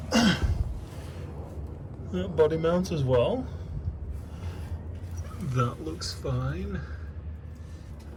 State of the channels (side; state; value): both; identical; correlation 1.00